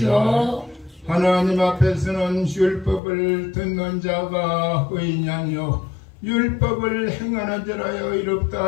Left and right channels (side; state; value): right; drops out; at 3.0 s